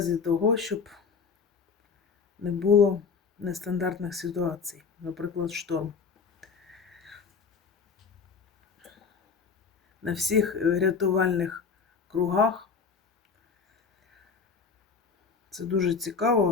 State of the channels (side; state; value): right; quieter; 5.5 dB